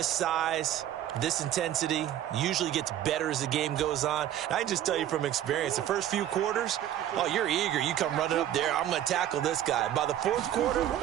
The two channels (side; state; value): left; quieter; 11.6 dB